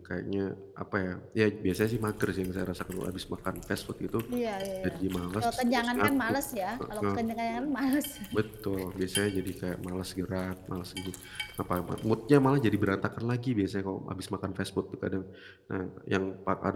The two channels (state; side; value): identical; both; correlation 1.00